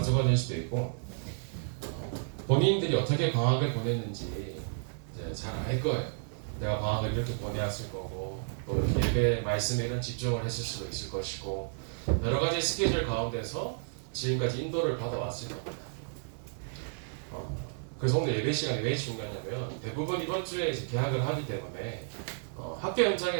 될 수도 있고, 본인들이 어떻게 방학을 보냈는지 이제 잘 알 거예요. 내가 방학을 이렇게 보내왔을 거고, 또 이렇게 예배 말씀에 이런 집중을 했을 수도 있을 것이고, 여러 가지 스케줄 가운데서 지금까지 인도를 받아왔을 겁니다. 그래서 오늘 예배 시간이 왜 중요하냐면, 대부분 이번 주에 이제 개학을 하기 때문에 학교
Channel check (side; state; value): left; silent; digital silence